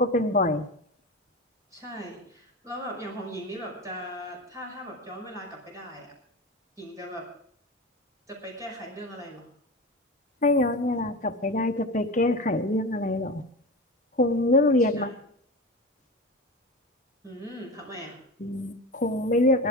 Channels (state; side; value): normal; both; correlation 0.26